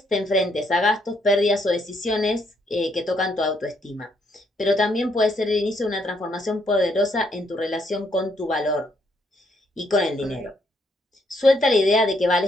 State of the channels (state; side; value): normal; both; correlation 0.73